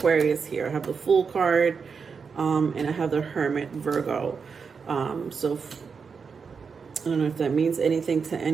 here. I have the Fool card, and I have the Hermit, Virgo. So I don't know if that means anything to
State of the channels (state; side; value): quieter; left; 5.6 dB